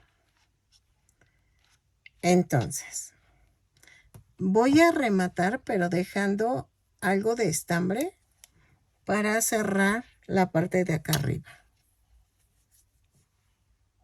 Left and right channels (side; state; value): both; identical; correlation 1.00